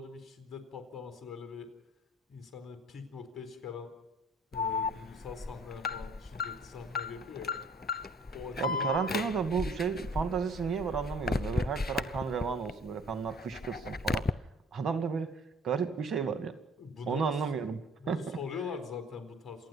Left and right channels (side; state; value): both; normal; correlation 0.54